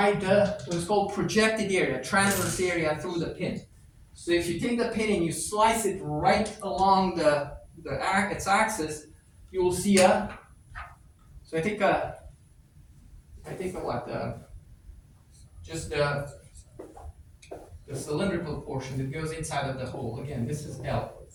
what is called projected area, transverse area through the pin. So if you take the pin and you slice it right along its axis, you will see so I take just the cylindrical portion that goes inside of the hole. Again, this is L.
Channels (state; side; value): identical; both; correlation 1.00